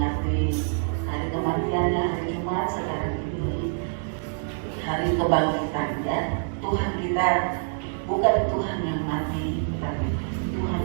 hari kematiannya hari Jumat, sekarang ini hari kebangkitan ya. Tuhan kita bukan Tuhan yang mati, tapi Tuhan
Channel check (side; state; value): left; silent; digital silence